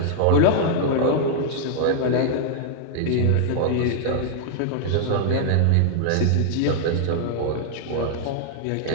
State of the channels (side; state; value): both; different; correlation -0.01